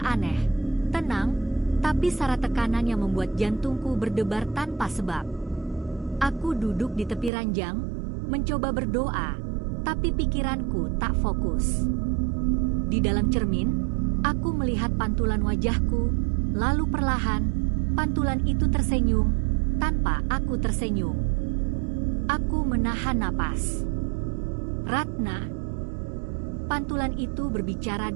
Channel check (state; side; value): drops out; left; at 7.3 s